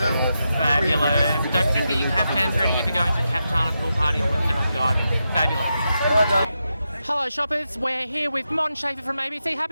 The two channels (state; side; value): inverted; both; correlation -0.87